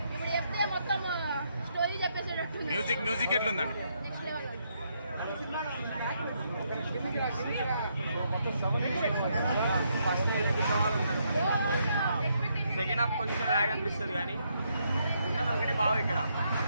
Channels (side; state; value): both; inverted; correlation -0.76